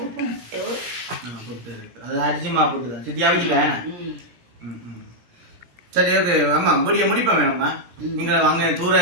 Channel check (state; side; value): late; left; 17 ms